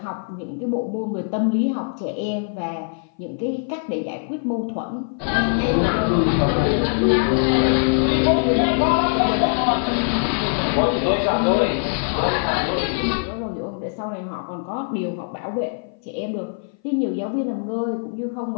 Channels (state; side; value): silent; right; 59 dB below the other